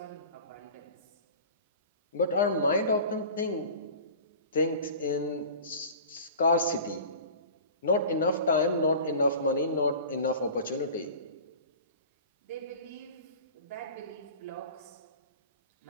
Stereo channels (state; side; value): inverted; both; correlation -0.40